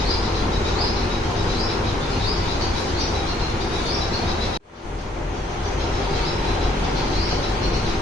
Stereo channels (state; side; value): normal; both; correlation 0.66